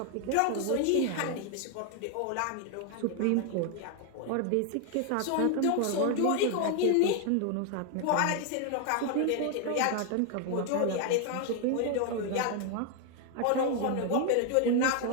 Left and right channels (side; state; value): both; different; correlation 0.00